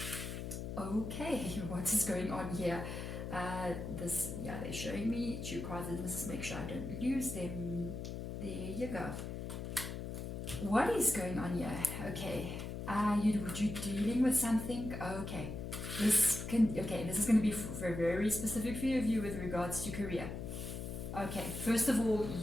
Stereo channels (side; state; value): left; noise; hum, 6 dB below the sound